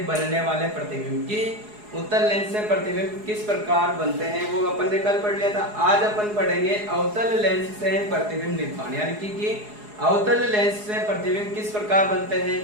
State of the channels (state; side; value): late; left; 4.8 ms